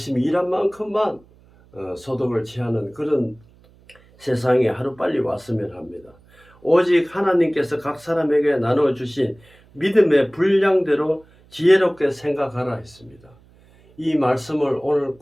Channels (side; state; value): right; noise; hum, 28 dB below the sound